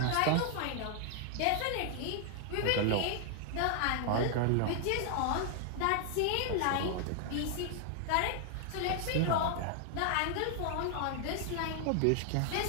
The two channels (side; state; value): both; different; correlation 0.00